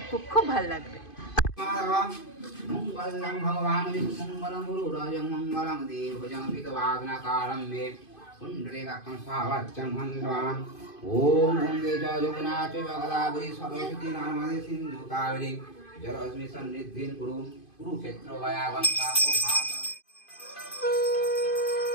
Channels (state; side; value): late; right; 2.5 ms